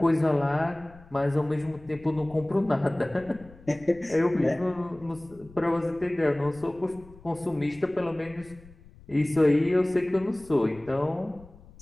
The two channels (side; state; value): left; noise; rumble, 22 dB below the sound